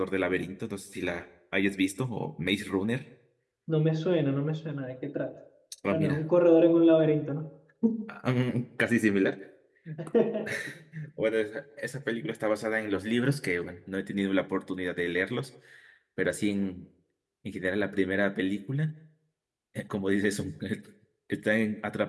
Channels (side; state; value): both; identical; correlation 1.00